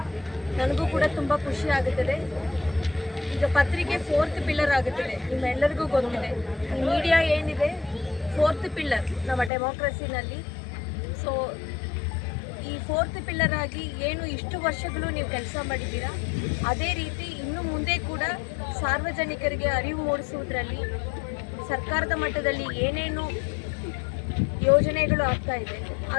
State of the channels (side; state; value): right; drops out; at 9.5 s